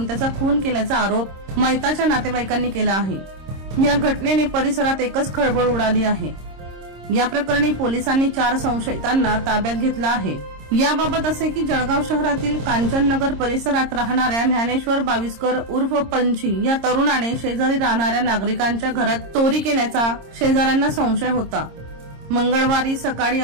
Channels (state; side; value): late; left; 26 ms